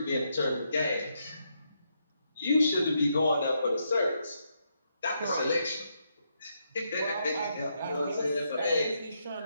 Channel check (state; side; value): inverted; both; correlation -0.80